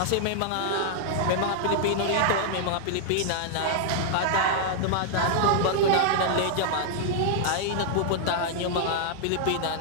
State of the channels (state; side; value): different; both; correlation -0.01